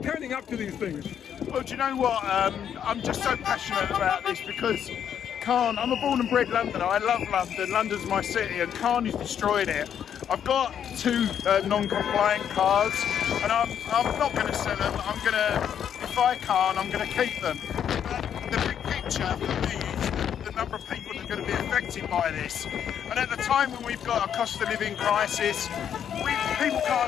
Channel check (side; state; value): right; quieter; 8.9 dB